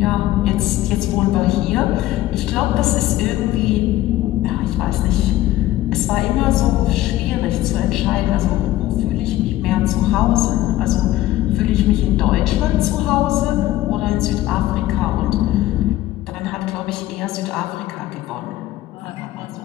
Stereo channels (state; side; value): quieter; right; 15.3 dB